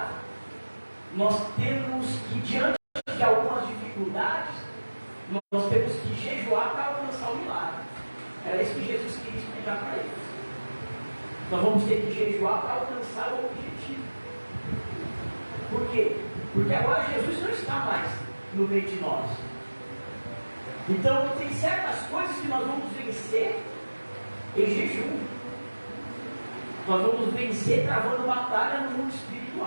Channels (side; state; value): both; inverted; correlation -1.00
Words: nós temos que, diante de algumas dificuldades, nós temos que jejuar para alcançar o milagre. Era isso que Jesus queria explicar para eles. Nós vamos ter que jejuar para alcançar o objetivo. Por quê? Porque agora Jesus não está mais no meio de nós. Então tem certas coisas que nós vamos vencer em jejum. Nós vamos vencer travando batalha no mundo